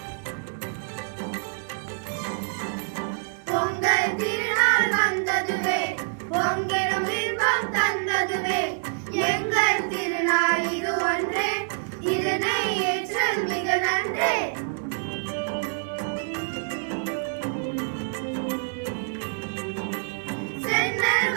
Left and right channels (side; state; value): left; silent; 61 dB below the other